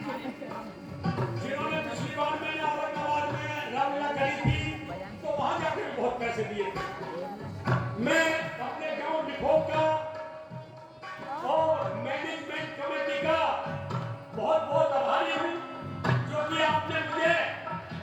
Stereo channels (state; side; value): identical; both; correlation 1.00